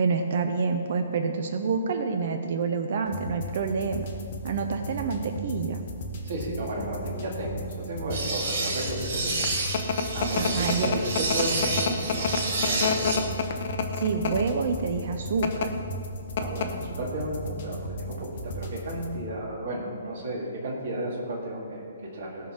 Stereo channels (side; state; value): both; inverted; correlation -0.54